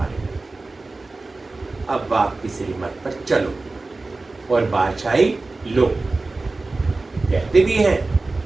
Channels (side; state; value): left; quieter; 3.4 dB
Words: अब बाप की श्रीमत पर चलो और बादशाही लो। कहते भी हैं,